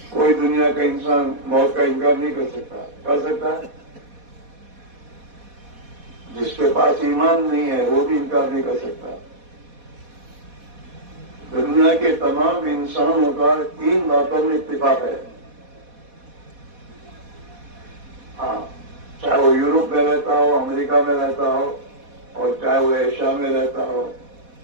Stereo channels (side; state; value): left; late; 4.1 ms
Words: کوئی دنیا کا انسان موت کا انکار نہیں کر سکتا. کر سکتا ہے؟ جس کے پاس ایمان نہیں ہے وہ بھی انکار نہیں کر سکتا. دنیا کے تمام انسانوں کا 3 باتوں میں اتفاق ہے. ہاں، چاہے وہ یورپ میں رہتا ہو، امریکہ میں رہتا ہو، اور چاہے وہ ایشیا میں رہتا ہو،